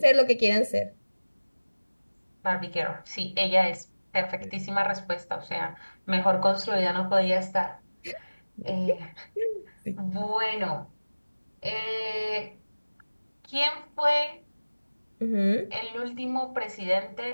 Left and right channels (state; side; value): inverted; both; correlation -1.00